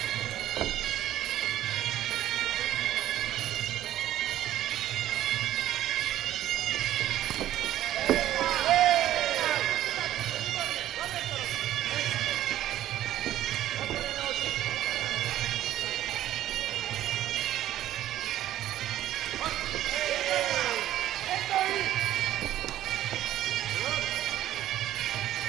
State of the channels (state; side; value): quieter; left; 13.1 dB